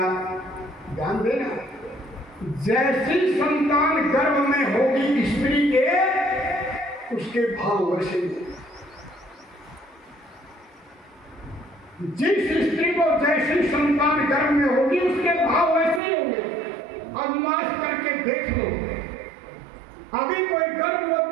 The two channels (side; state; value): left; drops out; at 16.0 s